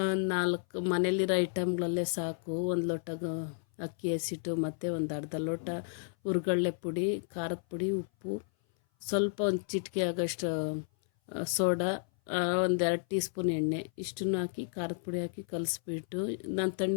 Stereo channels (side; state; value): right; silent; 56 dB below the other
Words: 4 ಮನೇಲಿರೋ ಐಟಮ್ಗಳಲ್ಲೇ ಸಾಕು. ಒಂದು ಲೋಟ ಅಕ್ಕಿ ಹಸಿಟ್ಟು ಮತ್ತು ಒಂದು ಅರ್ಧ ಲೋಟ ಹುರ್ಗಡ್ಲೆ ಪುಡಿ, ಖಾರದ ಪುಡಿ, ಉಪ್ಪು, ಸ್ವಲ್ಪ ಒಂದು ಚಿಟಿಕೆ ಆಗೋಷ್ಟು ಸೋಡಾ, ಒಂದು 2 ಟೀ ಸ್ಪೂನ್ ಎಣ್ಣೆ, ಇಷ್ಟನ್ನು ಹಾಕಿ ಖಾರದ ಪುಡಿ ಹಾಕಿ ಕಲಿಸ್ಬಿಟ್ಟು ನಾನು